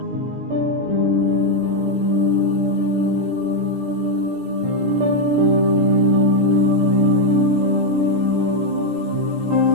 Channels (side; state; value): left; late; 17 ms